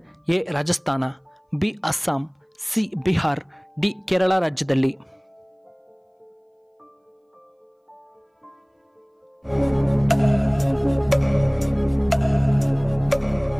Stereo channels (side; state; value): both; identical; correlation 1.00